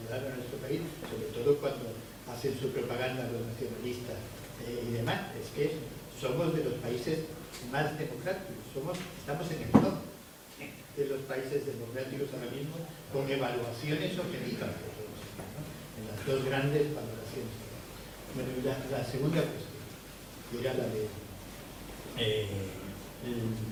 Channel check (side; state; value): both; identical; correlation 1.00